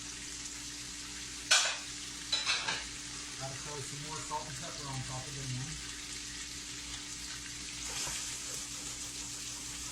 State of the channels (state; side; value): identical; both; correlation 1.00